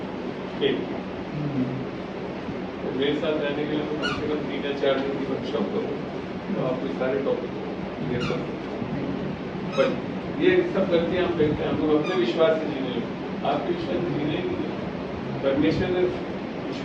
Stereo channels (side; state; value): both; identical; correlation 1.00